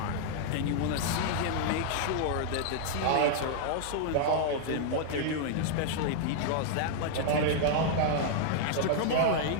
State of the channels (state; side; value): different; both; correlation 0.00